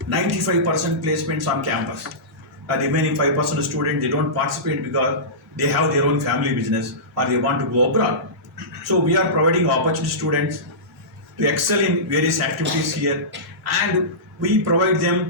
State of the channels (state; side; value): normal; both; correlation -0.19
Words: 95% placements on campus. The remaining 5% of students, they don't participate because they have their own family business or they want to go abroad. So we are providing opportunity to students to excel in various activities here, and we provide